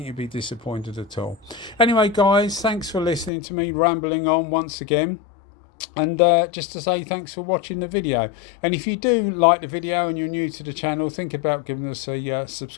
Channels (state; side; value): drops out; right; at 3.3 s